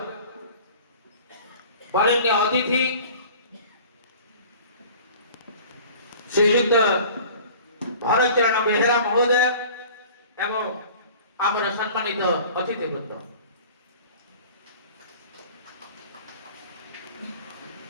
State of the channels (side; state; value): both; inverted; correlation -0.45